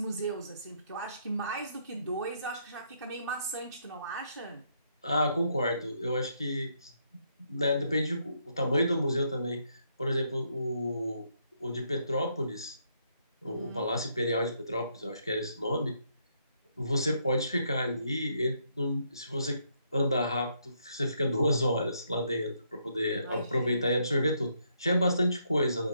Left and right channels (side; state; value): both; inverted; correlation -0.74